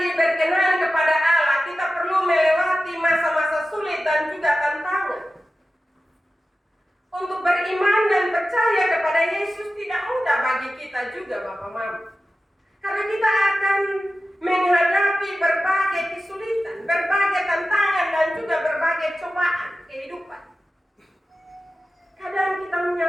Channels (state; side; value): normal; both; correlation 0.94